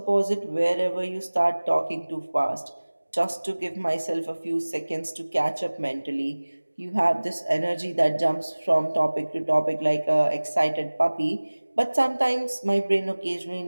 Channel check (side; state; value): both; inverted; correlation -1.00